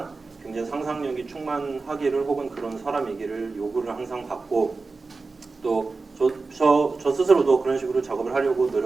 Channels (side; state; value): left; quieter; 4.0 dB